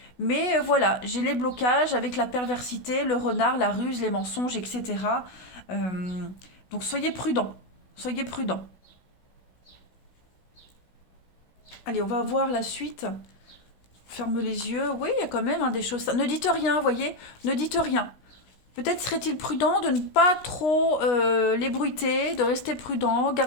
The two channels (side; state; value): right; late; 16 ms